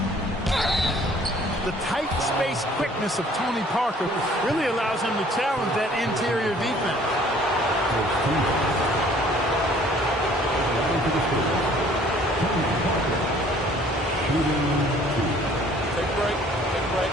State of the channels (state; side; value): normal; both; correlation 0.55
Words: The tight space quickness of Tony Parker really allows him to challenge that interior defense. Take a break. Take a break.